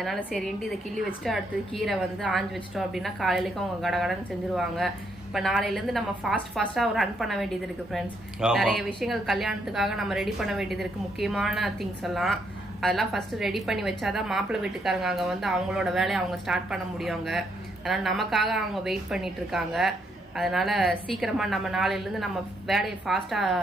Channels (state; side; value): normal; both; correlation 0.75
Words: சரின்ட்டு இதை கிள்ளி வச்சுட்டு அடுத்தது கீரை வந்து ஆஞ்சு வச்சிட்டோம் அப்படின்னா காலையிலேக்கு அவங்க கடன்னு செஞ்சிருவாங்க. இப்ப நாளையில இருந்து நம்ம ஃபாஸ்டா ரன் பண்ண வேண்டியது இருக்கு ஃப்ரெண்ட்ஸ். நிறைய விஷயங்கள் கல்யாணத்துக்காக நம்ம ரெடி பண்ண வேண்டியது இருக்கு. முக்கியமான திங்ஸ் எல்லாம் அதெல்லாம் ஃபர்ஸ்ட் ரெடி பண்ணி வச்சாதான் மாப்பிள்ளை வீட்டுக்காரங்க அங்க வந்து அவங்களோட வேலையை அவங்க ஸ்டார்ட் பண்ண முடியுங்க. அதனால நமக்காக அவங்க வெயிட் பண்ணிட்டு இருக்காங்க. அதனால சீக்கிரமா நம்ம நாளையில இருந்து நம்ம வேலையை ஃபாஸ்டா